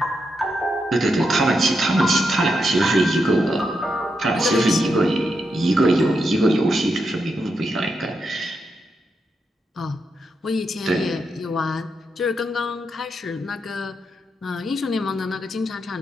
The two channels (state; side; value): normal; both; correlation 0.84